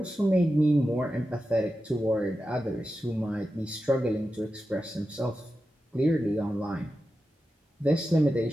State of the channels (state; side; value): normal; both; correlation 0.91